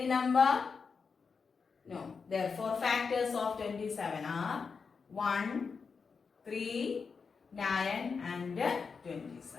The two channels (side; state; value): right; quieter; 5.3 dB